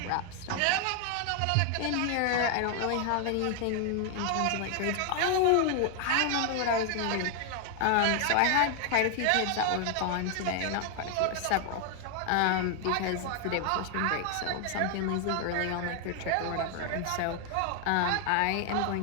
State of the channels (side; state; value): both; different; correlation 0.00